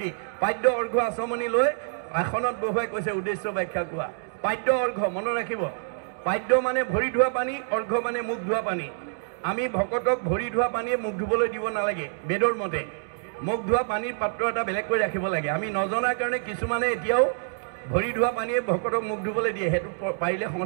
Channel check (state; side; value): silent; left; digital silence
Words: পাদ্য অৰ্ঘ্য আচমনি লৈ আসনত বহুৱাই কৈছে উদ্দেশ্য ব্যাখ্যা কোৱা পাদ্য অৰ্ঘ্য মনত ৰাখিব পাদ্য মানে ভৰি ধোৱা পানী অৰ্ঘ্য মানে মুখ ধোৱা পানী আমি ভকতক ভৰি ধোৱা পানীয়ে মুখ ধুবলৈ দিব নালাগে বেদৰ মতে মুখ ধোৱা পানীৰ পাত্ৰ এটা বেলেগকৈ ৰাখিব লাগে আমি নজনাৰ কাৰণে কিছুমানে এতিয়াও ভৰি ধোৱা পানীয়ে ভকতক মুখ ধুবলৈ দিয়ে সেইটো পাৰিলে